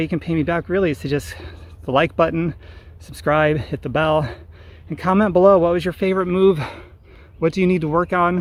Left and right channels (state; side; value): identical; both; correlation 1.00